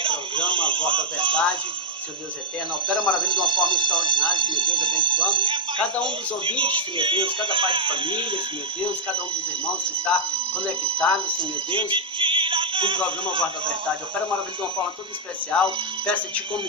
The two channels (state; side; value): normal; both; correlation -0.02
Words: programa Voz da Verdade. Senhor Deus eterno, opera maravilha de uma forma extraordinária, Senhor Deus, abençoando cada um dos ouvintes, Senhor Deus, cada pai de família, Senhor Deus, cada um dos irmãos que está conectado, Senhor Deus, com o programa Voz da Verdade. Opera maravilha de uma forma toda especial. Peço-te, como